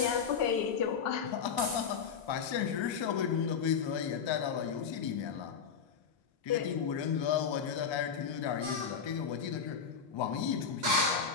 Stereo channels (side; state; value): right; quieter; 6.6 dB